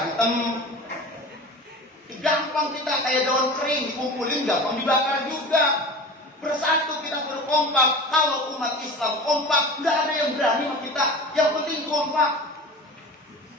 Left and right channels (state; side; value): normal; both; correlation 0.35